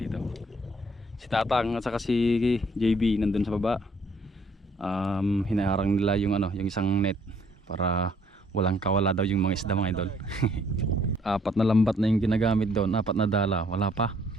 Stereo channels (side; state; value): both; normal; correlation 0.64